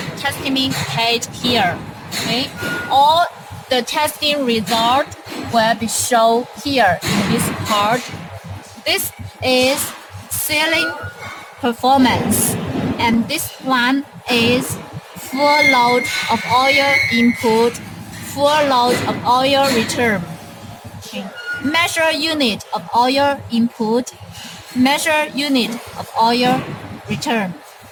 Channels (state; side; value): identical; both; correlation 1.00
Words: testing page here. Okay, all the testing result will be shown here in this part. This is sealing performance, and this one is full load of oil input, full load of oil return. Okay. Measure unit of oil input, measure unit of oil return.